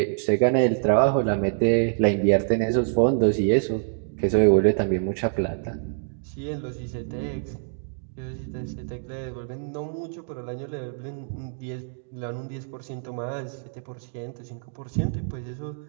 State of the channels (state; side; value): silent; left; digital silence